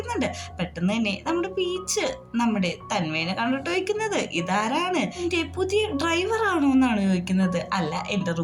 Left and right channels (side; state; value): both; identical; correlation 1.00